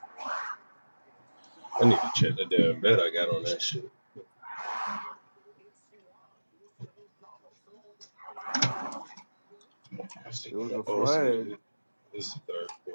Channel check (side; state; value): both; inverted; correlation -1.00